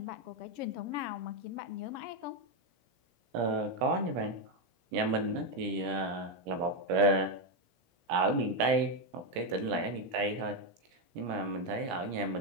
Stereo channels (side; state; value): left; late; 17 ms